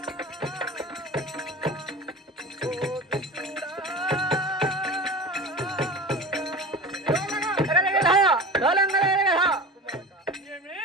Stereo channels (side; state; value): both; normal; correlation 0.33